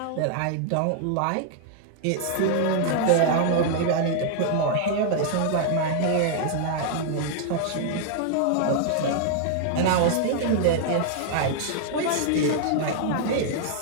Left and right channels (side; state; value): both; different; correlation 0.00